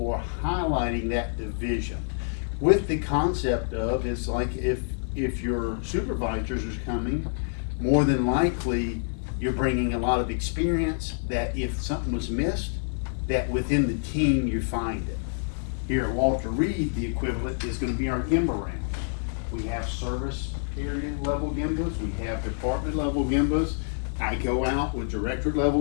highlighting that division. With the concept of, it's like if your supervisors are coming, more than likely, you're bringing a lot of experience that if something was missed, that within the team you find it. Here at Walter Reed, the equivalent is gonna be our GIMBA rounds. We have service area level GIMBAs, we have department level GIMBAs. I go out with directorate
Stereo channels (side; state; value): right; silent; digital silence